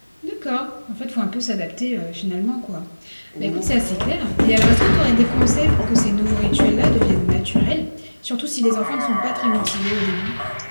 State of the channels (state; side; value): inverted; both; correlation -1.00